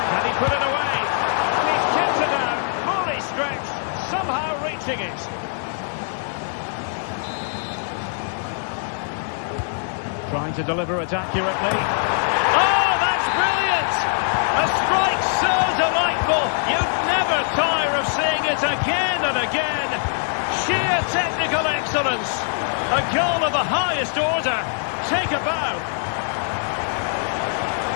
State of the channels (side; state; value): right; silent; 59 dB below the other